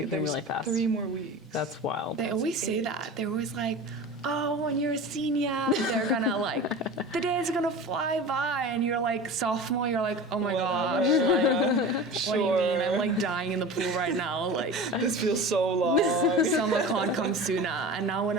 them There's really fast. 3 more weeks. That's wild. They always say that. They're always like, oh, when you're a senior, they're gonna like, the day's gonna fly by, and you're like sophomore, you're like, oh my gosh, like, what do you mean? I'm like dying in the pool right now. Like, This feels so long. summer can't come sooner. And now when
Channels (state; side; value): normal; both; correlation 0.33